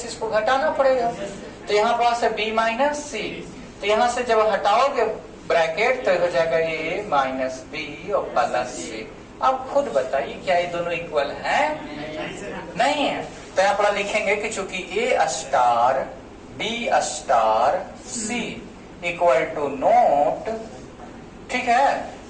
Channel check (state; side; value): identical; both; correlation 1.00